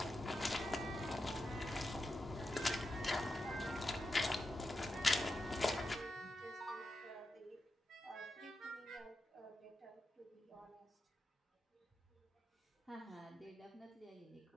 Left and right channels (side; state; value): both; normal; correlation 0.89